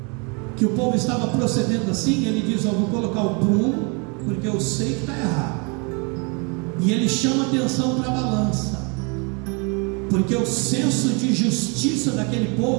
que o povo estava procedendo assim, ele diz, eu vou colocar o prumo, porque eu sei que está errado. E ele chama atenção para a balança, porque o senso de justiça daquele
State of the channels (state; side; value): quieter; left; 32.8 dB